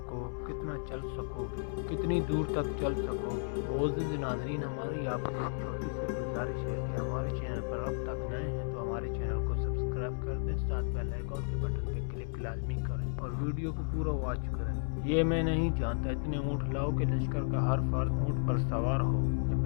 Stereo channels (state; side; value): silent; right; 55 dB below the other